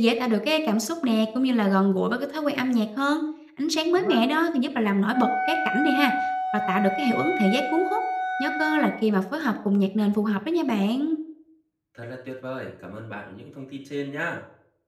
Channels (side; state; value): both; identical; correlation 1.00